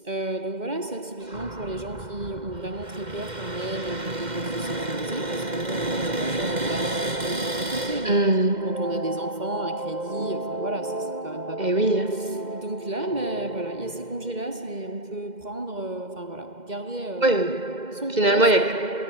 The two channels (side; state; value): left; late; 2.1 ms